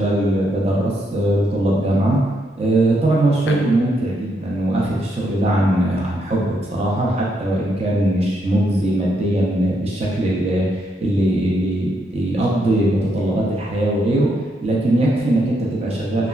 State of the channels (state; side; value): normal; both; correlation 0.78